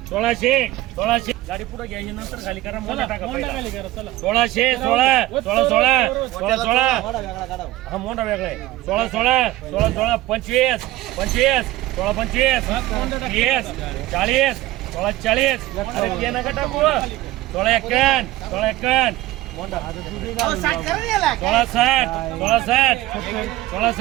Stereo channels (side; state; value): left; quieter; 16.9 dB